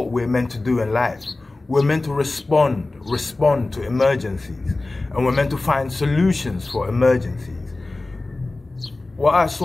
we're meant to do in life. We're meant to respond to emergencies, and we're meant to find solutions for emergencies. What I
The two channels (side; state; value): right; quieter; 3.1 dB